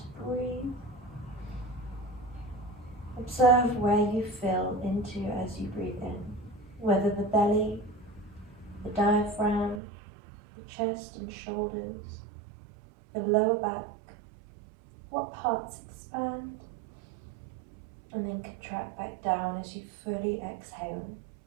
breathe. Observe where you fill into as you breathe in, whether the belly, the diaphragm, the chest and shoulders, the lower back, what parts expand, and then contract back down as you fully exhale.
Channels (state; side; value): drops out; left; at 9.8 s